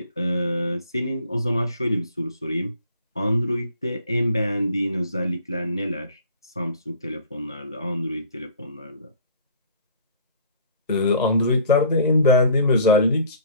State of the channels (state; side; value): inverted; both; correlation -0.50